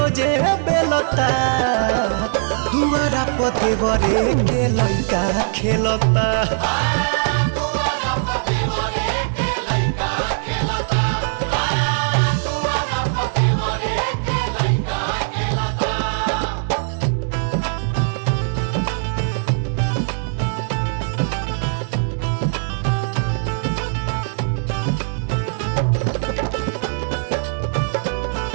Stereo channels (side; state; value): left; silent; digital silence